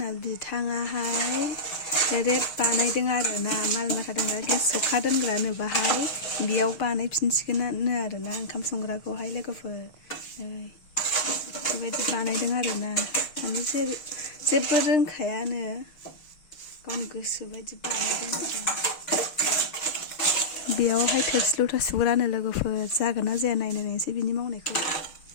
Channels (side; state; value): right; late; 6.5 ms